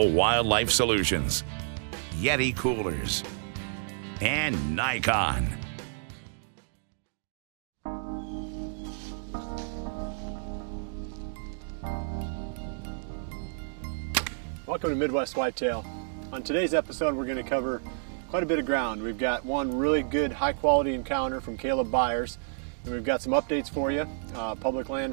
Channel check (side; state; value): left; silent; digital silence